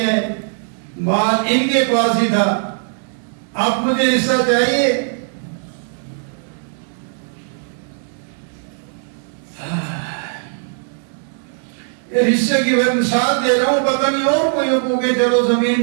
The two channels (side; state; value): left; silent; 66 dB below the other